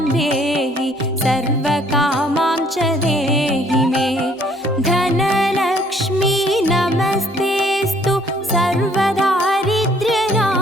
देहि सर्वकामां च देहि मे. धनलक्ष्मी नमस्तेस्तु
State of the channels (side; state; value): both; normal; correlation 0.61